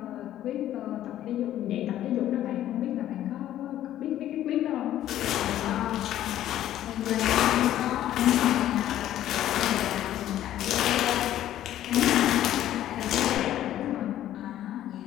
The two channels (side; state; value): right; quieter; 12.5 dB